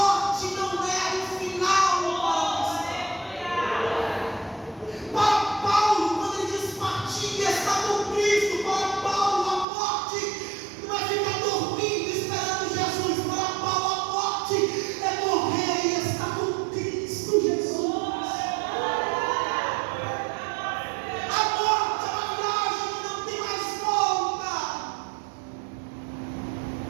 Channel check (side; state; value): left; drops out; at 9.7 s